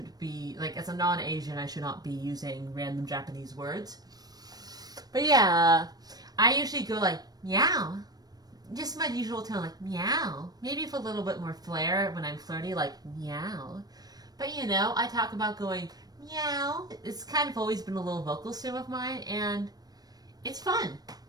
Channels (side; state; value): left; late; 0.19 ms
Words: be, like, as a non-Asian, I should not be using random Japanese words. But yeah, I usually go like, meow. Just my usual tone, like, meow. Maybe with a little bit more flair when I'm flirty, like, meow. But, I talk about going, meow. It's kind of always been a little vocal sim of mine, and it's fun.